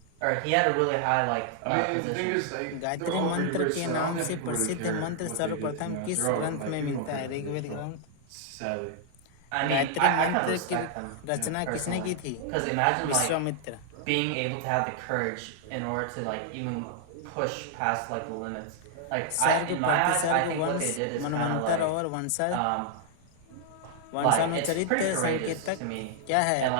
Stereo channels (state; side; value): different; both; correlation 0.00